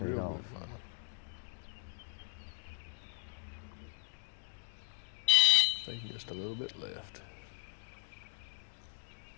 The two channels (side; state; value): right; silent; digital silence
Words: Real off. good final. Taking just a little bit left.